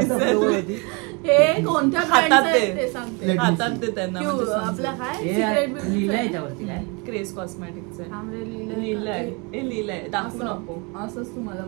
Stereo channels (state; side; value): quieter; left; 30.1 dB